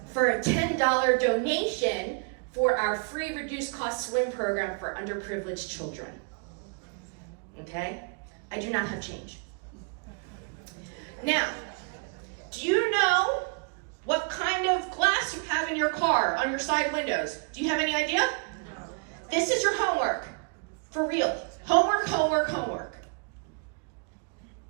for a $10 donation for our free reduced cost swim program for underprivileged children. Okay? I do not have change. Now, do you know what kind of glass you have in your car on your side windows? Do you have any idea? This is your homework. For real. Homework, homework, homework.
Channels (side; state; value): left; quieter; 37.4 dB